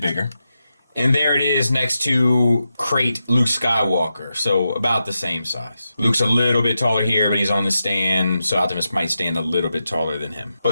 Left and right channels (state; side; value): inverted; both; correlation -0.88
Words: And there it is next to Crate Luke Skywalker. So about the same size. Luke's a little bit taller here, but he's on the stand. So Optimus might stand a little bit taller than him.